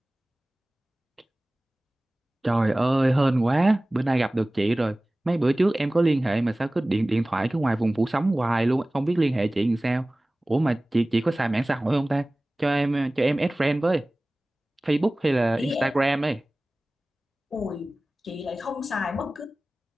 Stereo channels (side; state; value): both; normal; correlation 0.98